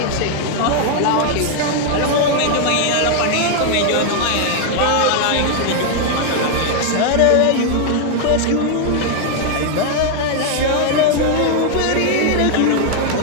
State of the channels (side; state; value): both; different; correlation 0.00